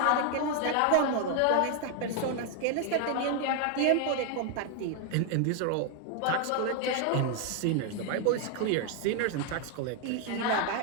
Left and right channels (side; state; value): both; different; correlation 0.01